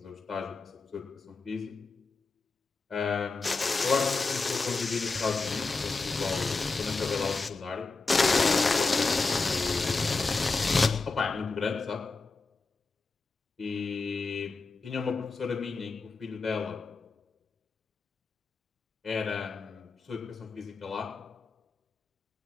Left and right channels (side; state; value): right; quieter; 4.0 dB